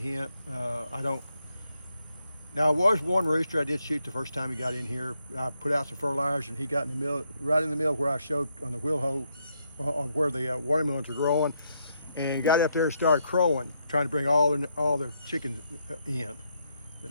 Now, there was one rooster I did shoot the first time he got in here. I put out some fertilizer, and he got in the middle, right in the middle where I showed on the wheel hoe, where the watermelons were growing, and he got up there and started crowing, trying to bring all the chickens in. So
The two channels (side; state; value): both; inverted; correlation -0.77